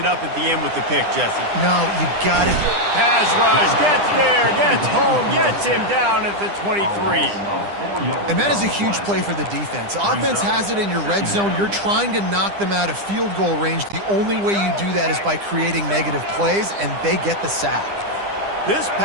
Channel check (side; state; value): left; late; 9.9 ms